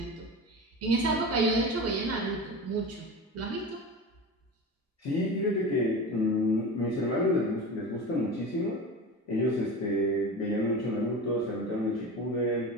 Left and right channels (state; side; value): normal; both; correlation 0.29